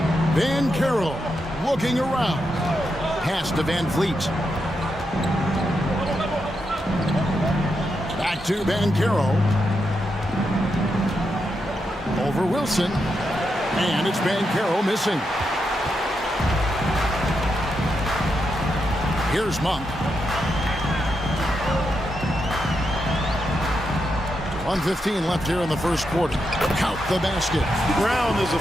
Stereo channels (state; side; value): normal; both; correlation 0.84